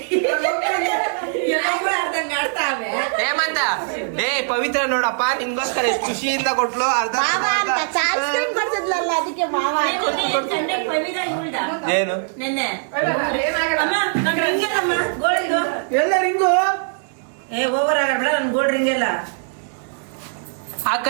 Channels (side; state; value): left; silent; digital silence